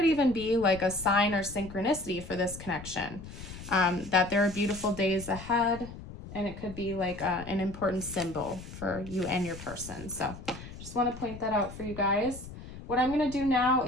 even be like a sign or synchronicity for this connection, that there are beautiful days ahead. And it could be like an important symbol for you and your person. So just want to point that out for you guys. What I'm going to do now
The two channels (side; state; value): left; noise; rumble, 13 dB below the sound